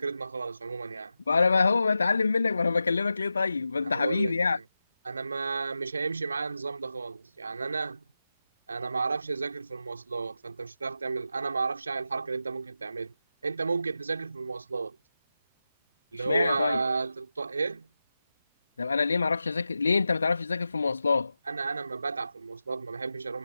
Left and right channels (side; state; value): both; inverted; correlation -0.91